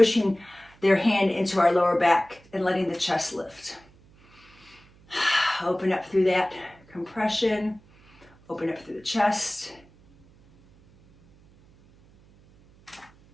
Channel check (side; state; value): right; noise; hum, 28 dB below the sound